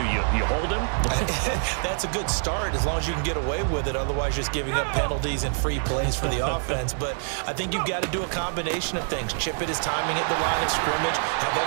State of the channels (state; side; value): silent; left; 58 dB below the other